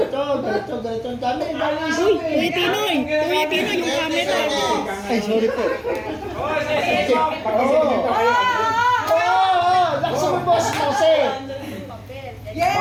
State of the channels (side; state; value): both; identical; correlation 1.00